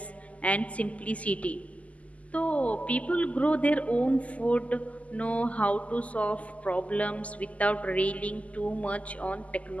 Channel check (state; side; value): late; right; 0.069 ms